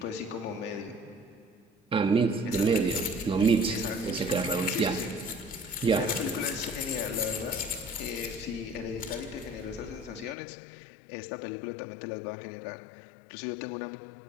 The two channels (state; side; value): drops out; right; at 10.4 s